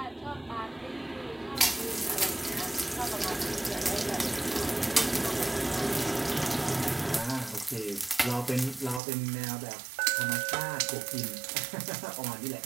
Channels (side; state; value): left; drops out; at 9.0 s